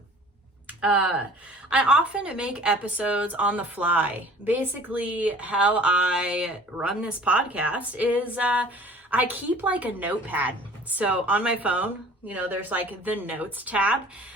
I often make episodes on the fly. Basically, how I run this podcast is I keep like a notepad. So on my phone, there's like the notes tab.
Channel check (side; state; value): both; normal; correlation 0.49